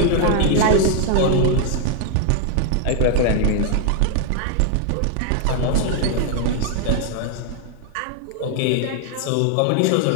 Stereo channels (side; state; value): both; different; correlation 0.00